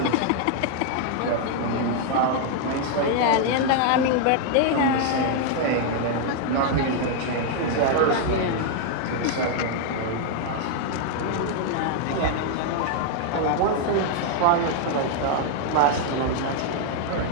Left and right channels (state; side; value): different; both; correlation 0.00